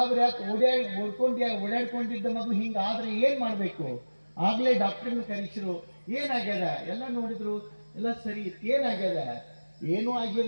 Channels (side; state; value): both; inverted; correlation -1.00